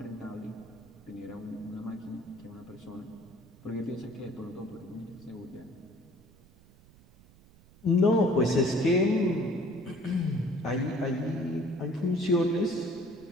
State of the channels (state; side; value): noise; right; rumble, 25 dB below the sound